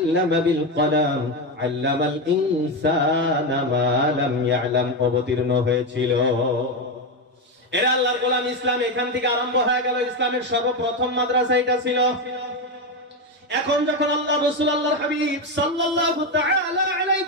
বিল কলাম, আল্লামাল ইনসানা মা লাম ইয়ালাম অবতীর্ণ হয়েছিল। এরা আল্লাহর গোলাম। ইসলাম এখান থেকে আরম্ভ হয়ে গেল। ইসলামের সর্বপ্রথম মাদ্রাসা এটা ছিল। এখন যখন আল্লাহ রাসূল আল্লাহর হাবিব সাল্লাল্লাহু তাআলা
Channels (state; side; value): normal; both; correlation 0.11